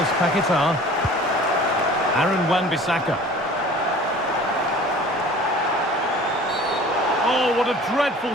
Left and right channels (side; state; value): both; normal; correlation 0.45